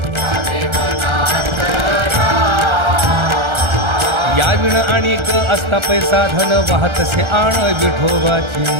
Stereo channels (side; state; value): left; late; 1.3 ms